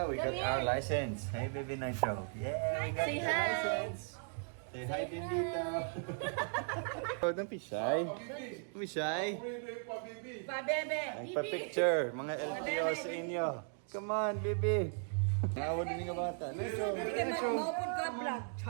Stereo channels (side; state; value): left; silent; 53 dB below the other